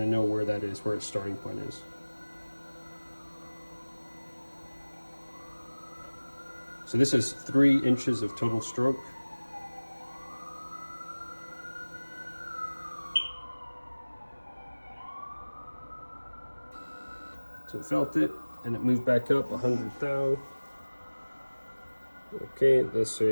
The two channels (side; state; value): both; inverted; correlation -1.00